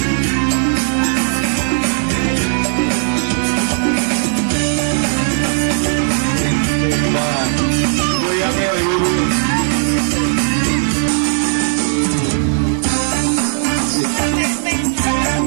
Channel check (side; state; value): left; silent; 62 dB below the other